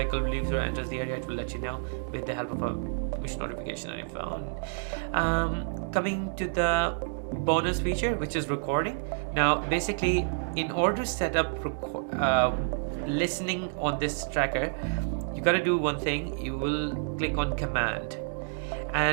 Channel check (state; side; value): silent; left; digital silence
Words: leaves or enters the area, it will let you know with the help of a push notification on your phone. Coming to the bonus feature, which is recording. Now basically, in order to set up listening on this tracker, you got to do one thing. You will click on command,